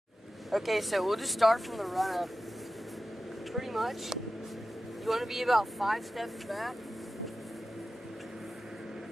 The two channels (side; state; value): both; normal; correlation 0.94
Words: Okay, so we'll just start from the run-up. Pretty much, you want to be about 5 steps back.